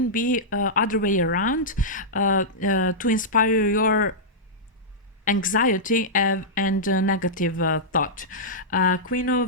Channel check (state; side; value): normal; both; correlation -0.11